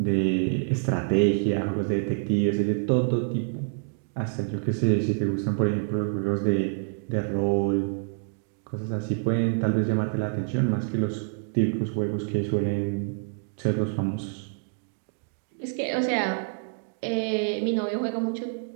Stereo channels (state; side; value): silent; left; digital silence